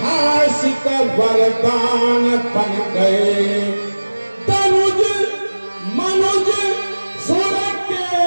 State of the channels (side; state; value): both; inverted; correlation -1.00